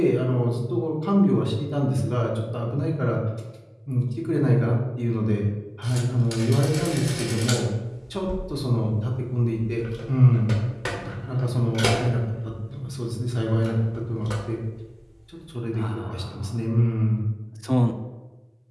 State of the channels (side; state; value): both; identical; correlation 1.00